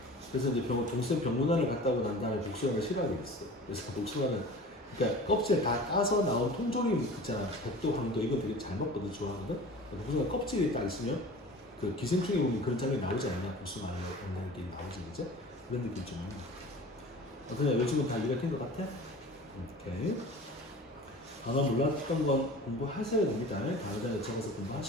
그래서 이제 동생 병문안을 갔다 오고 난 다음에 복숭아를 싫어하게 됐어. 그래서 복숭아는 그러니까 껍질 다 까서 나온 통조림 있잖아. 백도, 황도 이건 되게 잘 먹거든, 좋아하거든. 복숭아 껍질이 딱 있으면 그 기생충에 보면 그런 장면이 나오지 않냐? 복숭아 먹는 게 나오지, 그죠? 그런 느낌 좀. 어떠냐? 요즘은 다 이해가 된 것 같아? 오케이. 단어 몰랐던 건 공부하셔야 됩니다. 단어장에 적어서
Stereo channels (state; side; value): normal; both; correlation 0.40